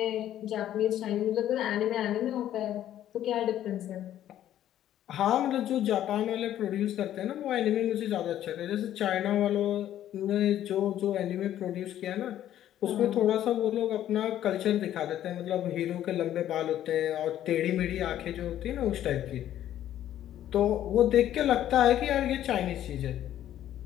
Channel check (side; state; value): right; quieter; 11.8 dB